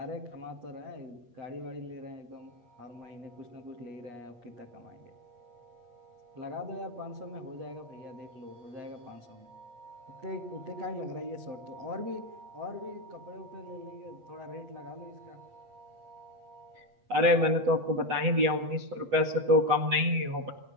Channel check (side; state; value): left; late; 7.9 ms